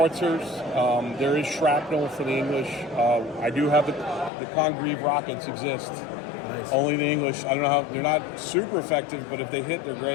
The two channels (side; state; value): right; drops out; at 4.3 s